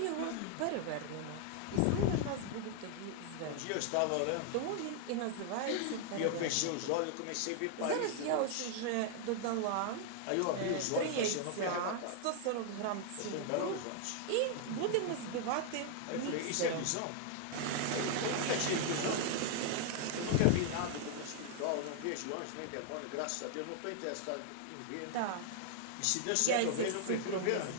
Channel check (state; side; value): different; both; correlation 0.00